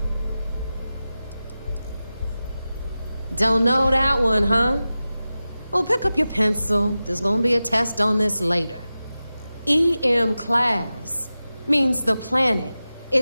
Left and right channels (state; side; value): inverted; both; correlation -0.95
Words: Don't know that one, huh? Well, pick up your pencil. There's gonna be a test on this later. EM-class means the planet